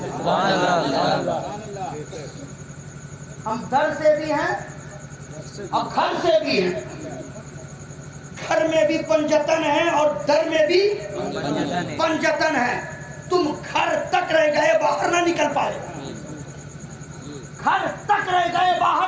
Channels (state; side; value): identical; both; correlation 1.00